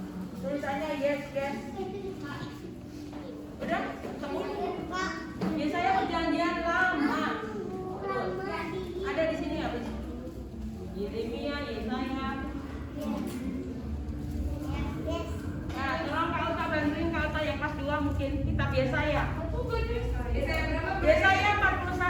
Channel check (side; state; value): both; identical; correlation 1.00